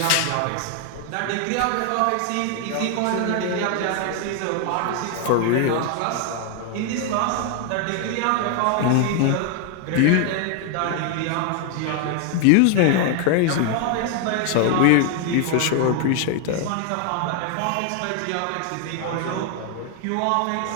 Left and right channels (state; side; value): different; both; correlation 0.00